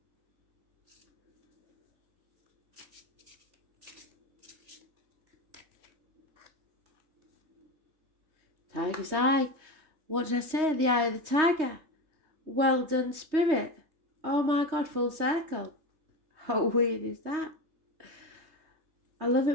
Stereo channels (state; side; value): late; left; 3.2 ms